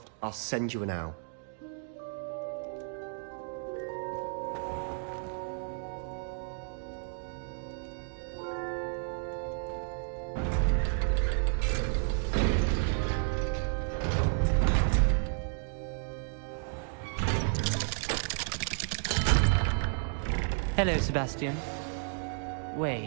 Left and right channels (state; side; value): silent; left; 56 dB below the other